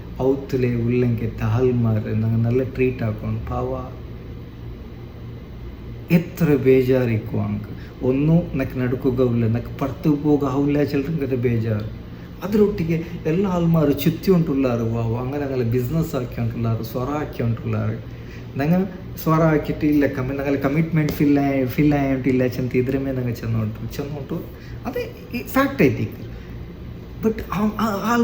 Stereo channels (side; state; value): both; identical; correlation 1.00